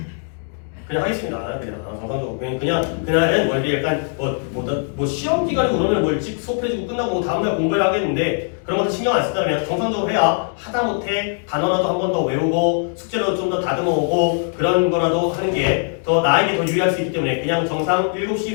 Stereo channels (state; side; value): silent; right; 56 dB below the other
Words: 그냥 하겠습니다. 그냥 정상적으로 그날은 뭐 이렇게 약간 뭐 시험 기간이고 그러면 뭐 일찍 수업해주고 끝나고 뭐 다음날 공부를 하겠는데 그런 것도 신경 안 쓰다 그냥 정상적으로 해야 하다못해 단어라도 한 번 더 외우고 숙제로 좀 더 다듬어오고 그런 거라도 하는 게 더 나에게 더 유리할 수 있기 때문에 그냥 정상